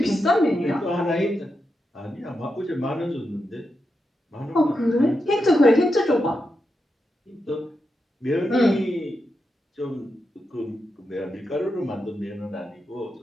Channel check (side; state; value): both; normal; correlation 0.87